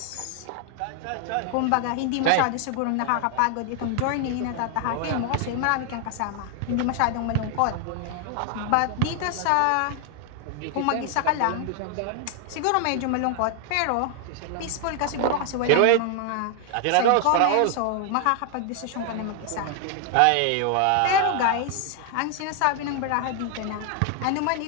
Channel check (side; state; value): both; different; correlation 0.00